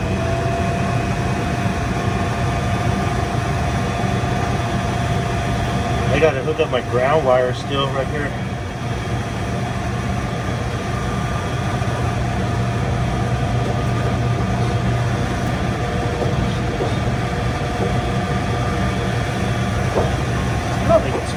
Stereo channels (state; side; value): identical; both; correlation 1.00